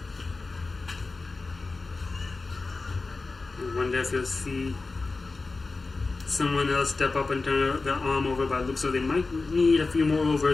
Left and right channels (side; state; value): right; quieter; 3.8 dB